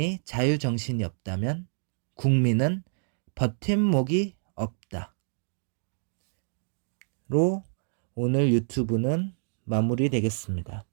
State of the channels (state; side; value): silent; left; digital silence